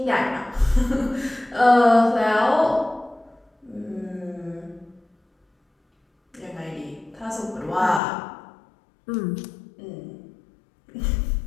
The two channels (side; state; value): right; drops out; at 8.0 s